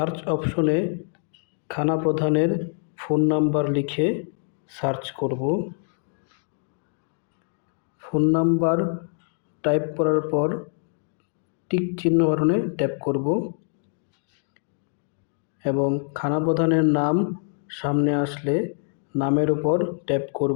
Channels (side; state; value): right; silent; 56 dB below the other